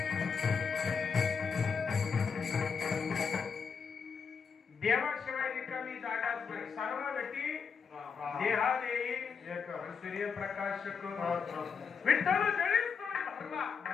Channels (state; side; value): quieter; right; 6.0 dB